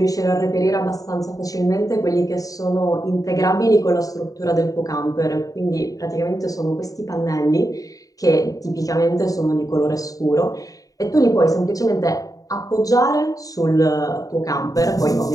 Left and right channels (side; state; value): right; late; 0.17 ms